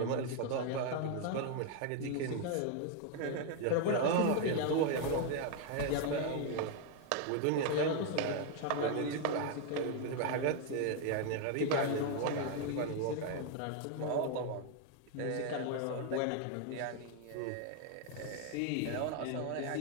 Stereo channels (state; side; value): different; both; correlation 0.01